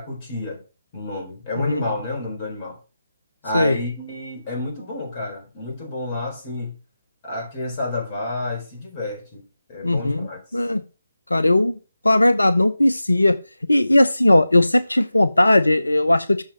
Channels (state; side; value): inverted; both; correlation -0.94